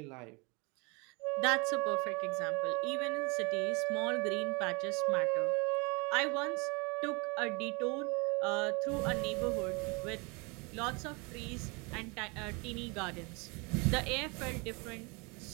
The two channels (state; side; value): quieter; left; 29.4 dB